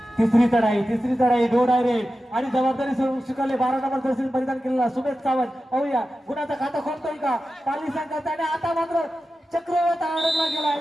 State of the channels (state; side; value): normal; both; correlation 0.93